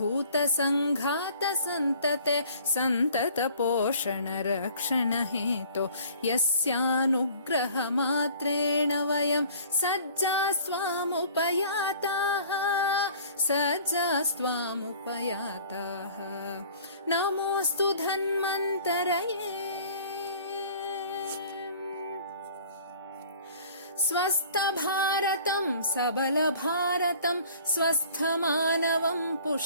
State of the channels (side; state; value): both; inverted; correlation -0.50